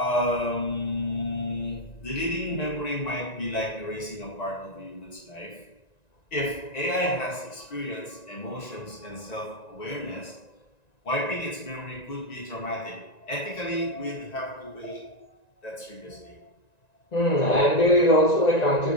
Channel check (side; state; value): right; late; 1.9 ms